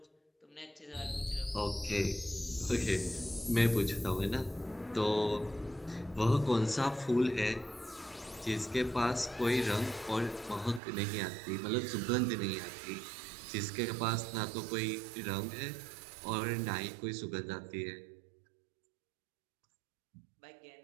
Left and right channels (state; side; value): drops out; left; at 10.8 s